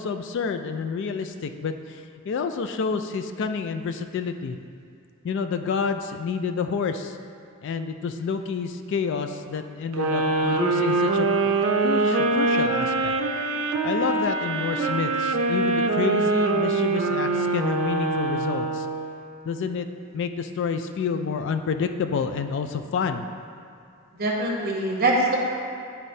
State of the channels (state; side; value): normal; both; correlation 0.06